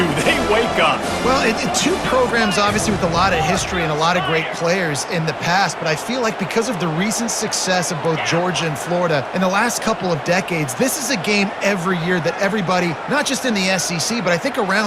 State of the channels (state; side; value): identical; both; correlation 1.00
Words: they wake up? Well, two programs obviously with a lot of history and a lot of great players in the past, but I feel like because of the recent success of both Georgia and Florida in the last couple of decades, this is a game every year that everybody, not just in the SEC, but I think